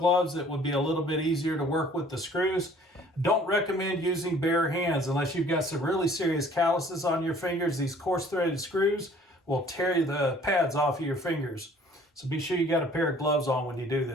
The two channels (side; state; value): both; normal; correlation 0.54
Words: that would be a little bit easier to work with the screws. Don't recommend using bare hands unless you've got some really serious calluses on your fingers. These coarse threaded screws will tear the pads off of your fingers. So be sure you got a pair of gloves on when you do